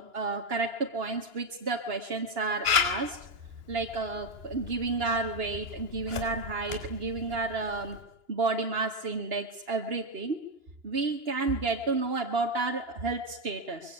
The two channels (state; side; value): late; left; 2.9 ms